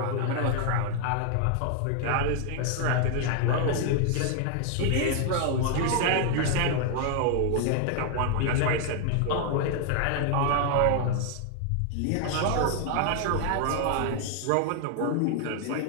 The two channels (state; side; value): different; both; correlation 0.00